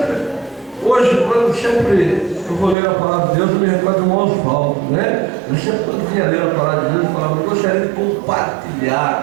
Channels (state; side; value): drops out; left; at 2.8 s